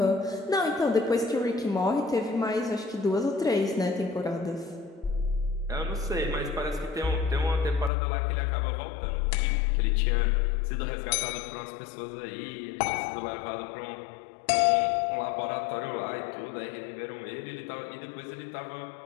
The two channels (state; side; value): drops out; right; at 7.9 s